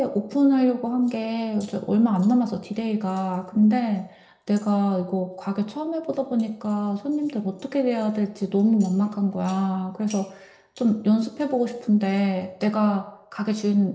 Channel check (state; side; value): identical; both; correlation 1.00